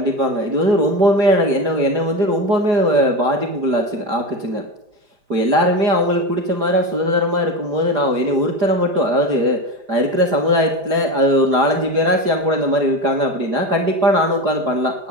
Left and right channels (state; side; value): late; left; 5.0 ms